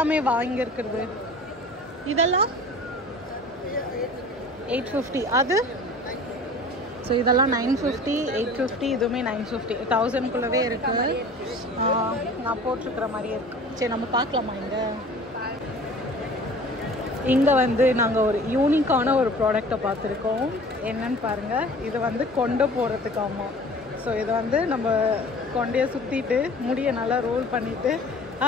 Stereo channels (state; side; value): normal; both; correlation 0.44